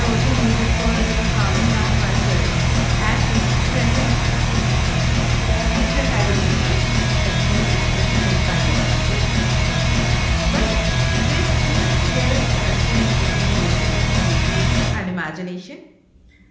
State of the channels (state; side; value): identical; both; correlation 1.00